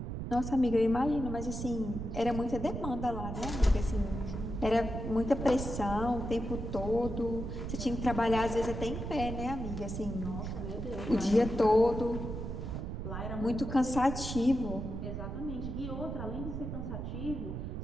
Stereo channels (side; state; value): right; noise; rumble, 5 dB below the sound